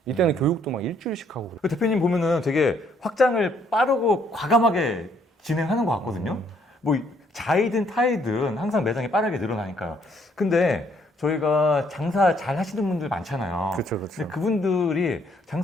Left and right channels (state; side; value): normal; both; correlation 0.67